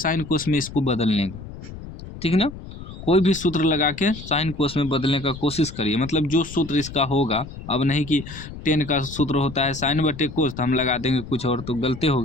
कोस में इसको बदलने का, ठीक ना। कोई भी सूत्र लगा के साइन कोस में बदलने का कोशिश करिए। मतलब जो सूत्र इसका होगा, अब नहीं कि 10 का सूत्र होता है साइन बटे कोस तो हम लगा देंगे कुछ और, तो गलती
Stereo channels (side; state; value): left; noise; rumble, 13 dB below the sound